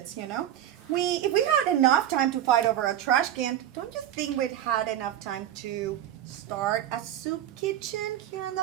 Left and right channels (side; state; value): left; quieter; 11.4 dB